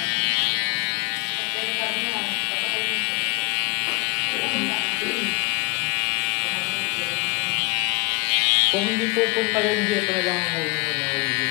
Kung hindi pupunta yung dito na lang ang huli mo na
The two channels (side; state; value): right; quieter; 27.3 dB